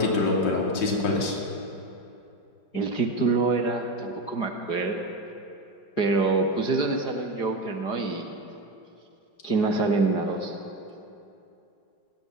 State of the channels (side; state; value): right; late; 5.7 ms